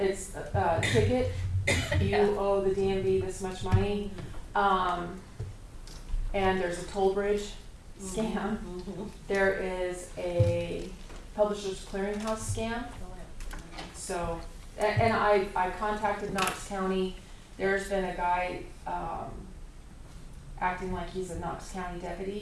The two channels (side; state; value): both; identical; correlation 1.00